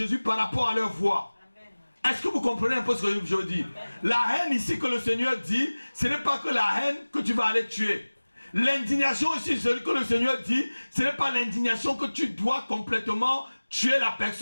par rapport à leurs voix. Est-ce que vous comprenez un peu ce que je veux dire? La haine ici que le Seigneur dit, ce n'est pas que la haine que tu vas aller tuer. L'indignation ici, ce que le Seigneur dit, ce n'est pas l'indignation que tu dois complètement tuer la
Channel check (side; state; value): both; inverted; correlation -1.00